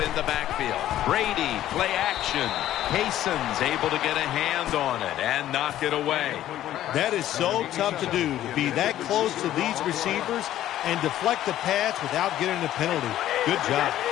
the backfield. Brady, play action. Payson's able to get a hand on it and knock it away. That is so tough to do, to be that close to these receivers and deflect the pass without getting a penalty. Good job.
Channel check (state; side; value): quieter; right; 12.8 dB